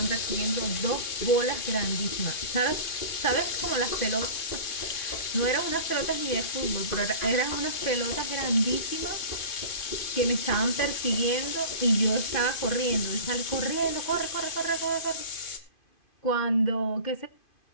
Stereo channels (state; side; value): late; right; 2.5 ms